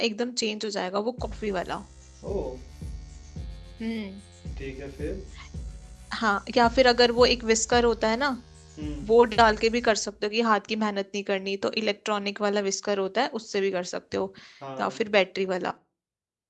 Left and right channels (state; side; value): identical; both; correlation 1.00